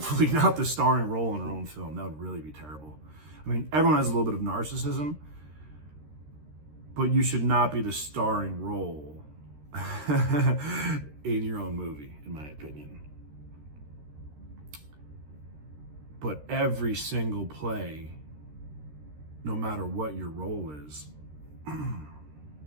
not the starring role in our own film. That would really be terrible. I mean, everyone has a little bit of narcissism, but you should not be the starring role in your own movie, in my opinion. But every single play, no matter what your role is,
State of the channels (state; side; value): late; left; 13 ms